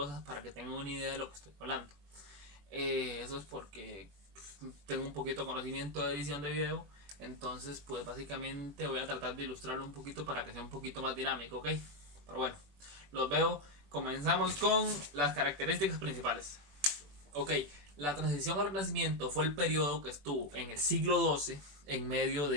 para que tengan una idea de lo que estoy hablando. Eso es porque tengo un poquito de conocimiento de edición de video, entonces pues básicamente voy a tratar de ilustrarlo un poquito para que sea un poquito más dinámico, ¿ok? Pero bueno, los veo. Comenzamos con las características principales. Ok, la transición al Renacimiento fue el periodo que estuvo en el siglo XII, en medio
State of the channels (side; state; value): left; late; 21 ms